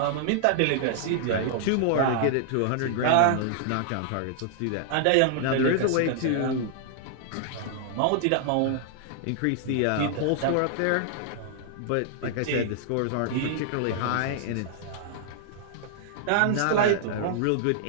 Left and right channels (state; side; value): different; both; correlation -0.01